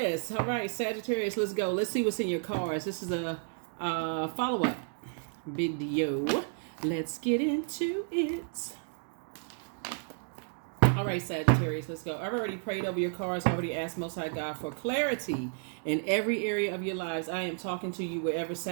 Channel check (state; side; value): silent; left; 57 dB below the other